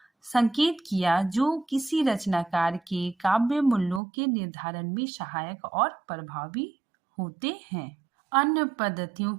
संकेत किया जो किसी रचनाकार के काव्य मूल्यों के निर्धारण में सहायक और प्रभावी होते हैं। अन्य पद्धतियों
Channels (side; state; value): left; drops out; at 4.0 s